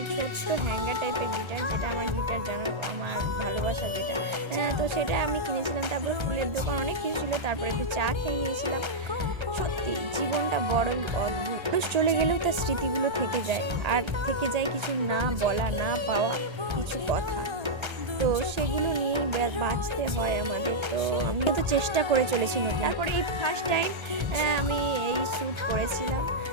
ছোট্ট হ্যাঙ্গার টাইপের গিটার, যেটা আমার গিটার জানো, আমার ভালোবাসা যেটা, তো সেটা আমি কিনেছিলাম। তারপরে ফুলের দোকান অনেক কিছু ছিল। তারপরে একটু চা খেয়ে নিয়েছিলাম। সত্যি জীবনটা বড়ই অদ্ভুত। মানুষ চলে গেলেও তার স্মৃতিগুলো থেকে যায়, আর থেকে যায় কিছু না বলা, না পাওয়া কিছু কথা। তো সেগুলো নিয়েই বাঁচতে হয় আমাদের। তো আমিও তো চেষ্টা করে চলেছি। তারপরে এই ফার্স্ট টাইম আমি এই শ্যুট করেছিলাম।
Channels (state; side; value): late; left; 1.3 ms